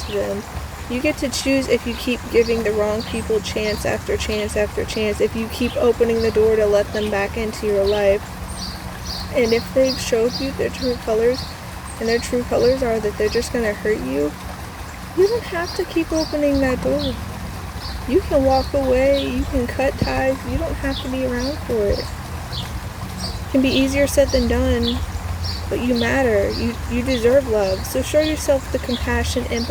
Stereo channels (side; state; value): both; identical; correlation 1.00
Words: them. You get to choose if you keep giving the wrong people chance after chance after chance, if you keep opening the door to let them back into your life. And if they've showed you their true colors, and their true colors are that they're just going to hurt you, you don't have to keep opening that door. You can walk away, you can cut ties, you don't have to be around for it. It can be easier said than done, but you matter. You deserve love. So show yourself the compassion,